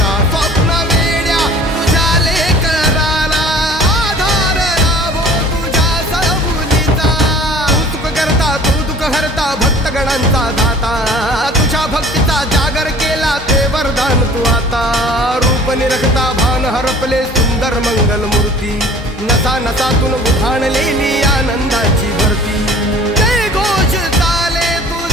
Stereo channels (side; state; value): both; normal; correlation 0.48